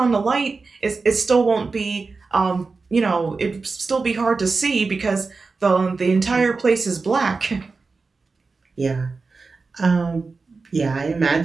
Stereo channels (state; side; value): quieter; left; 4.2 dB